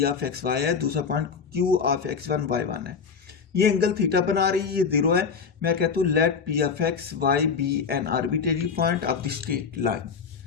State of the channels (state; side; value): quieter; right; 5.9 dB